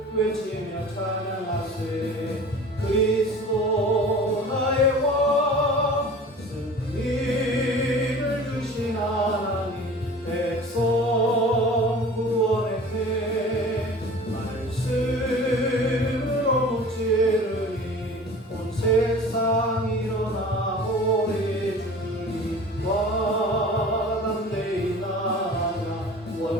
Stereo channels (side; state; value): both; normal; correlation 0.41